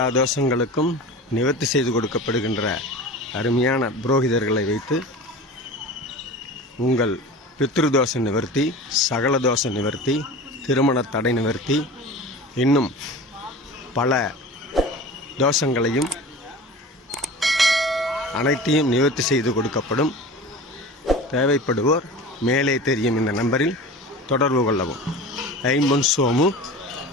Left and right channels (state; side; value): normal; both; correlation 0.35